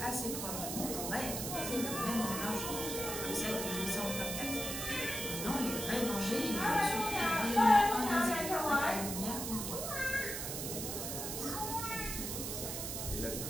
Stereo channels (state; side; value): noise; right; hiss, 4 dB below the sound